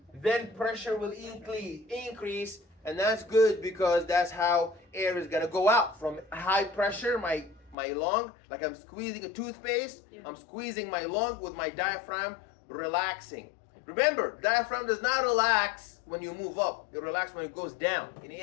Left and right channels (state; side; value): drops out; right; at 7.8 s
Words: Then pressure will increase, and that's good because that's how air is going to go out. From high pressure, my my lung, like I'm squeezing a toothpaste. Yeah. I'm squeezing my lung with my diaphragm, relaxing. Remember, diaphragm does not relax when you move up. It relaxes when it goes down in